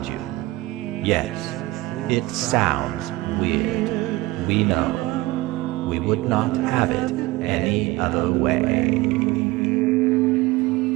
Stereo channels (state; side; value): quieter; left; 19.4 dB